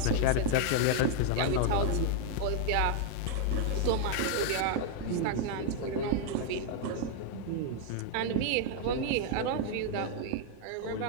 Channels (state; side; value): different; both; correlation 0.00